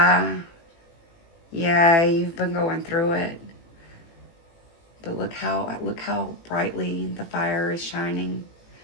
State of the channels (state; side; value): late; right; 18 ms